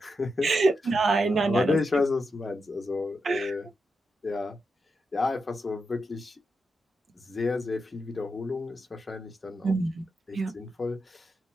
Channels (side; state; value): both; normal; correlation 0.86